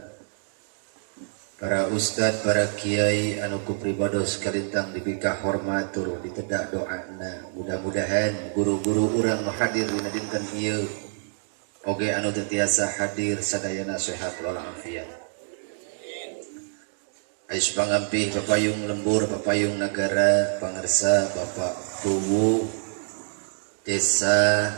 para ustad, para kiai anu ku pribados kalintang dipikah hormatur ditedak doana. Mudah-mudahan guru-guru urang hadir dina dinten ieu oge anu teu tiasa hadir sadayana sehat walafiat. Ais pangampih papayung lembur, papayung nagara, pangarsa Bapak Kuwu Desa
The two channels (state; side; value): silent; left; digital silence